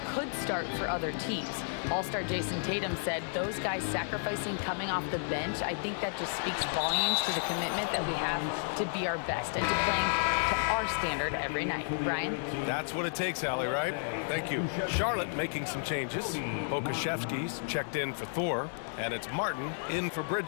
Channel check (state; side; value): silent; right; 56 dB below the other